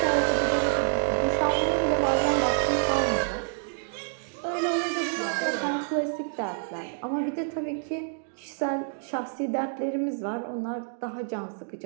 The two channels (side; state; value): left; silent; digital silence